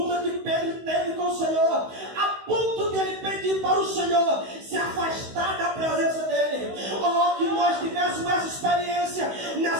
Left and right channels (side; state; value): left; late; 16 ms